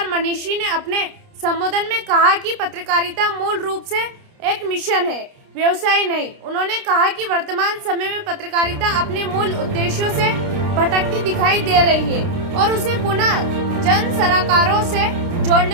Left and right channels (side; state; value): left; late; 29 ms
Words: मनीषी ने अपने संबोधन में कहा कि पत्रकारिता मूल रूप से एक मिशन है, व्यवसाय नहीं। उन्होंने कहा कि वर्तमान समय में पत्रकारिता अपने मूल उद्देश्यों से भटकती दिखाई दे रही है और उसे पुनः जन सरोकारों से